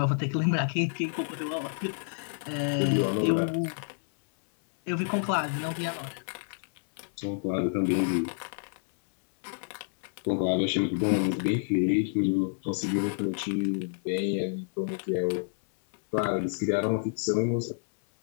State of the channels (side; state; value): right; silent; 59 dB below the other